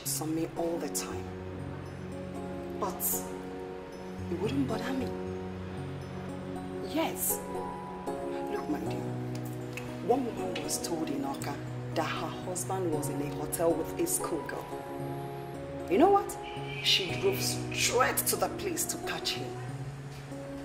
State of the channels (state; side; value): identical; both; correlation 1.00